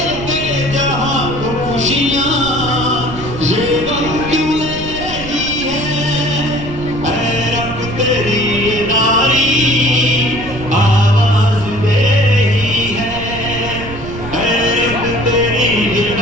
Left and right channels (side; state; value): right; noise; rumble, 12 dB below the sound